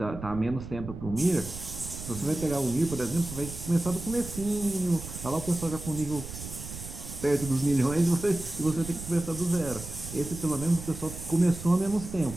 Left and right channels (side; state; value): right; noise; rumble, 10 dB below the sound